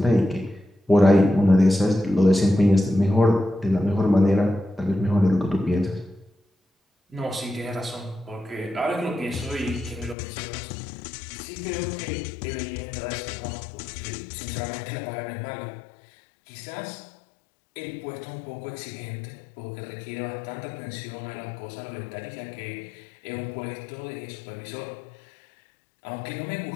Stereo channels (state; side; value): drops out; right; at 10.2 s